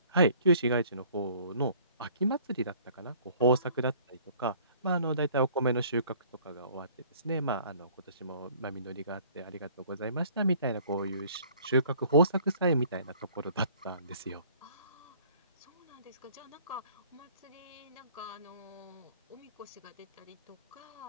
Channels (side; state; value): both; inverted; correlation -0.55